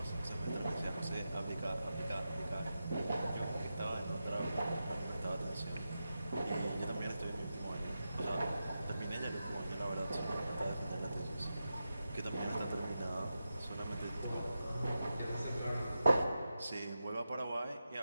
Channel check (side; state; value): both; inverted; correlation -0.90